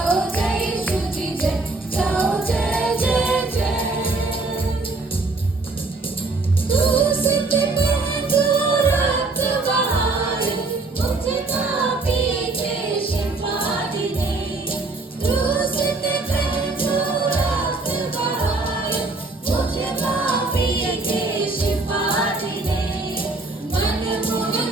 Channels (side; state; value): left; quieter; 3.4 dB